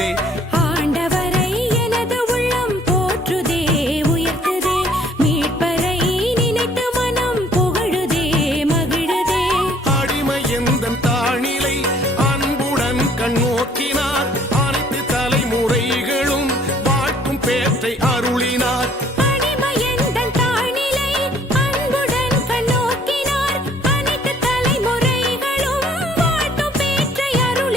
ஆண்டவரை எனது உள்ளம் போற்றுதே உயர்த்துதே, மீட்பரை நினைத்து மனம் புகழுதே மகிழுதே. அடிமை எந்தன் தாழ்நிலை அன்புடன் கண்ணோக்கினார், அனைத்து தலைமுறைகளும் வாழ்க்கும் பேற்றை அருளினார்.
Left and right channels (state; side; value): normal; both; correlation 0.59